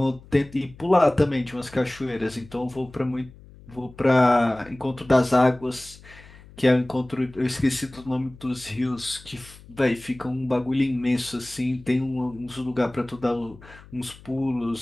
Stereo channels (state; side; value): noise; left; hum, 21 dB below the sound